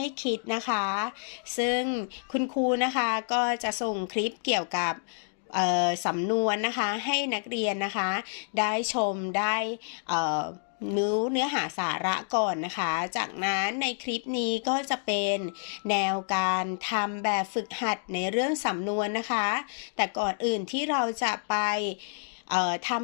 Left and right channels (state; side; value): silent; right; digital silence